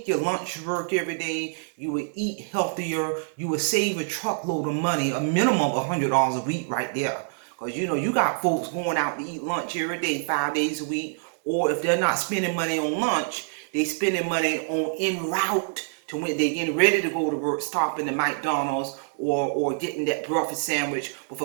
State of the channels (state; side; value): silent; left; digital silence